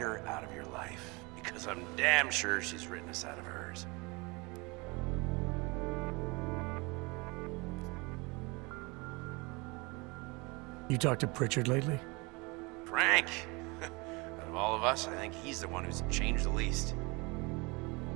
her out of your life. Because I'm damn sure she's written us out of hers. You talked to Pritchard lately? Frank! Out of all of us, I think he's the one who's changed the least.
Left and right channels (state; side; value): quieter; left; 26.7 dB